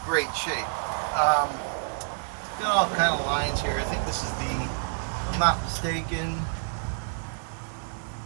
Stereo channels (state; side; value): silent; left; 59 dB below the other